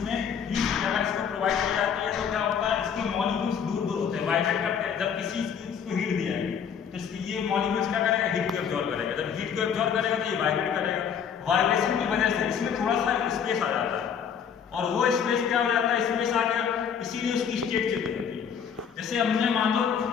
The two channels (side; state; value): right; quieter; 7.5 dB